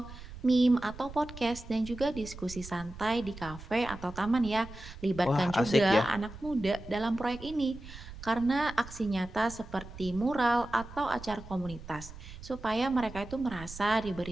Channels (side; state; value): right; noise; rumble, 14 dB below the sound